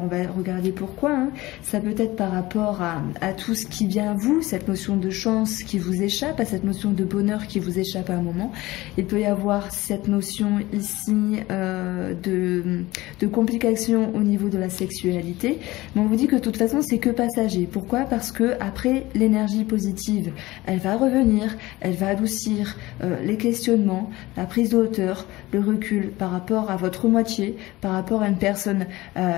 on va regarder pourquoi. Hein. Ça peut être par rapport à tout ce qui vient à vous, cette notion de chance qui vous échappe, à cette notion de bonheur qui vous échappe à un moment. Il peut y avoir cette notion ici de complications au niveau de la sexualité. Mais on vous dit que de toute façon c'est que passager. Pourquoi? Parce que après l'énergie positive, elle va revenir, elle va adoucir les questionnements, la prise de hauteur, le recul par rapport à votre moitié, par rapport à une personne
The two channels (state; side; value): quieter; right; 19.0 dB